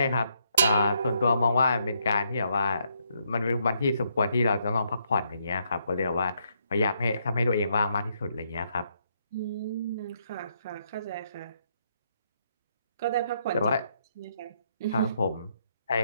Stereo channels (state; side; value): inverted; both; correlation -0.75